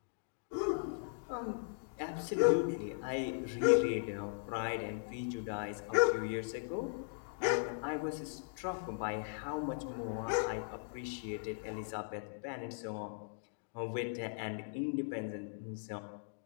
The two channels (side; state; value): right; silent; digital silence